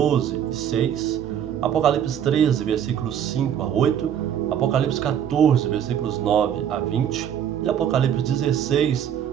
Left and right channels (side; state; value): left; quieter; 9.3 dB